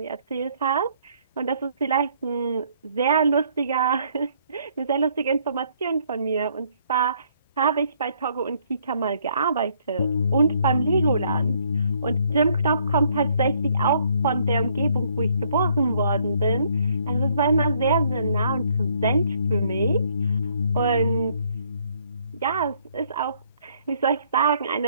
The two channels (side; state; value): both; inverted; correlation -0.66